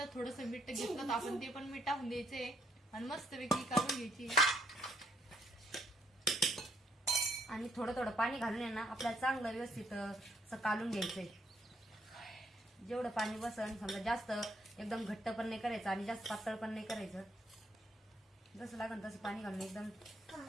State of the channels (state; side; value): normal; both; correlation 0.70